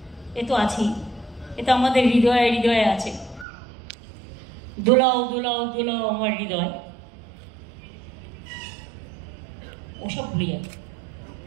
এ তো আছেই, এ তো আমাদের হৃদয়ে হৃদয়ে আছে। দোলাও দোলাও দোলাও আমার হৃদয়, ওসব ভুলে যাবে।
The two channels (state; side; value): drops out; left; at 3.5 s